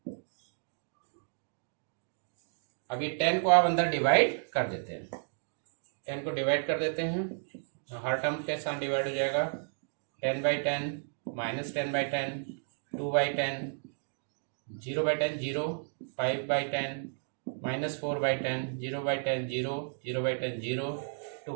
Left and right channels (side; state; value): left; silent; digital silence